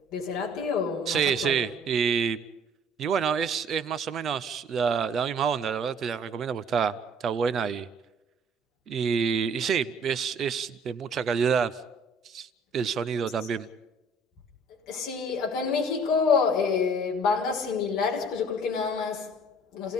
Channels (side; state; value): both; normal; correlation 0.55